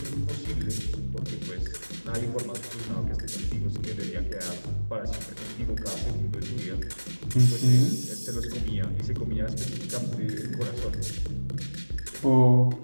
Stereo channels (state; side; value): inverted; both; correlation -1.00